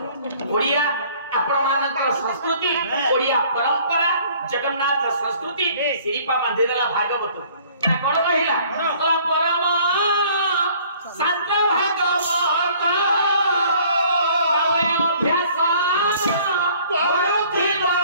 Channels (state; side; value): inverted; both; correlation -0.55